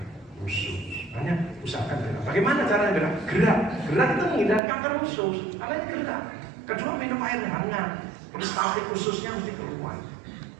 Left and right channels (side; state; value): left; drops out; at 4.6 s